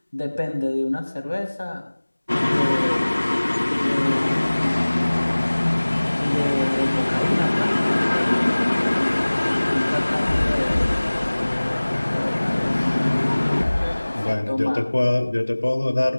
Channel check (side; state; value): both; inverted; correlation -1.00